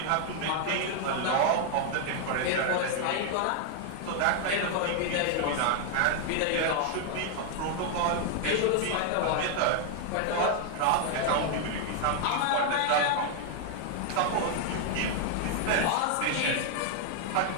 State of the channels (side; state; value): both; different; correlation 0.00